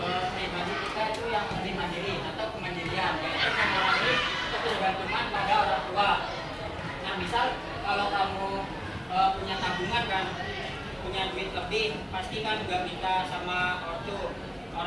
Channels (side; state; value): both; identical; correlation 1.00